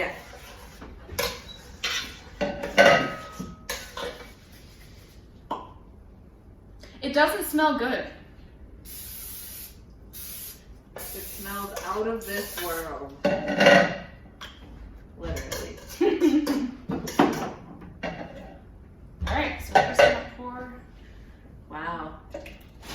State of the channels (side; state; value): both; identical; correlation 1.00